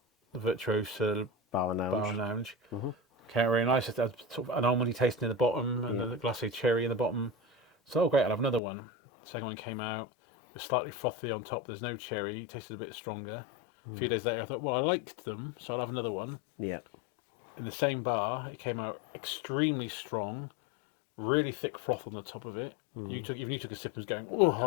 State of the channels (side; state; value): right; drops out; at 8.6 s